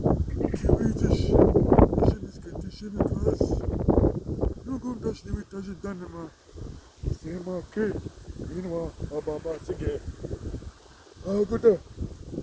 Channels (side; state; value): both; identical; correlation 1.00